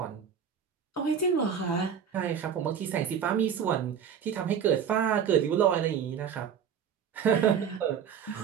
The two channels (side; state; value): left; quieter; 7.7 dB